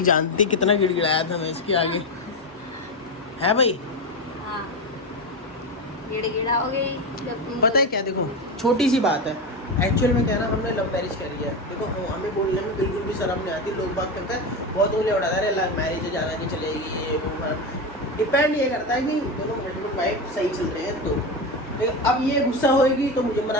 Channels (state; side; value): normal; both; correlation 0.17